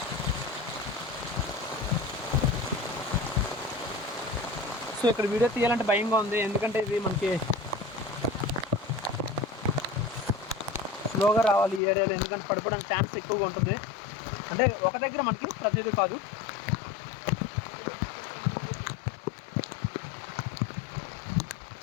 సో ఇక్కడ వీడియో తీయాలంటే భయంగా ఉంది, ఎందుకంటే ఇది మనకి స్లోగా రావాలి ఈ ఏరియాలో, ఎందుకంటే పడిపోవడానికి ఛాన్స్ ఎక్కువగా ఉంటుంది. అంటే ఒక దగ్గర మనకి ప్రతిదీ కాదు.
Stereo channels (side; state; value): right; drops out; at 11.8 s